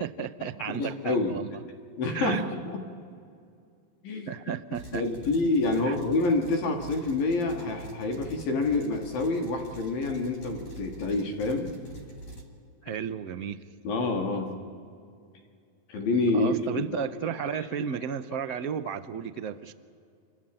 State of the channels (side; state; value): right; late; 11 ms